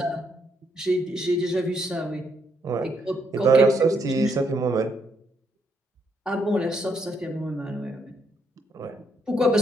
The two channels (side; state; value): both; normal; correlation 0.75